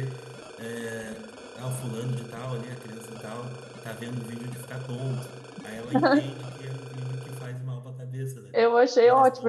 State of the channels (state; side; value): identical; both; correlation 1.00